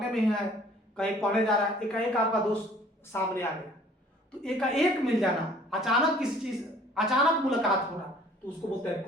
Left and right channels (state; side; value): normal; both; correlation 0.54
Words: में ही है, कहीं पढ़ने जा रहा है, एकाएक आपका दोस्त सामने आ गया, तो एकाएक मिल जाना, अचानक किसी चीज, अचानक मुलाकात होना, तो उसको बोलते हैं